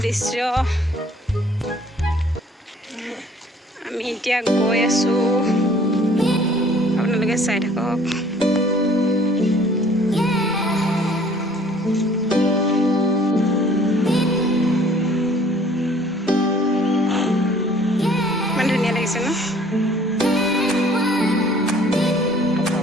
দৃশ্য। আমি এতিয়া গৈ আছোঁ, আপোনালোকে চাই থাকক।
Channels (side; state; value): both; normal; correlation 0.56